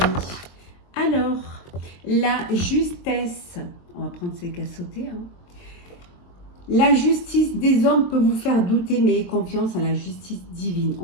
amis. Alors, la justesse, on va prendre ces qu'à sauter, hein. La justice des hommes peut vous faire douter, mais ayez confiance en la justice divine.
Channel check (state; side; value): late; right; 22 ms